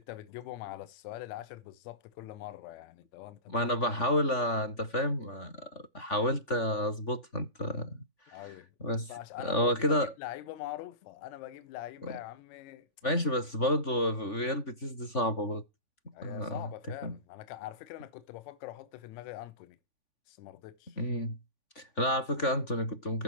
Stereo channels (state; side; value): late; right; 3.5 ms